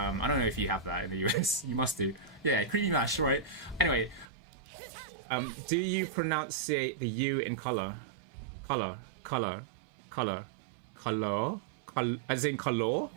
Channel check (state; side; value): drops out; left; at 4.2 s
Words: don't know if you have that in the US. You must do. Yeah, creamy mash, right? Anyway. Do you pronunciate the U in color, as in color?